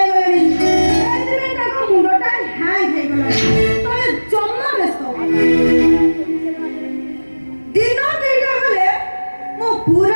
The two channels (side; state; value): both; inverted; correlation -1.00